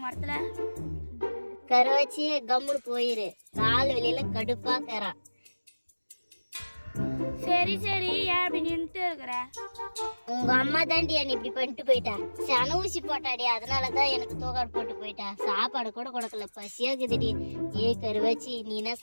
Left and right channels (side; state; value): both; inverted; correlation -1.00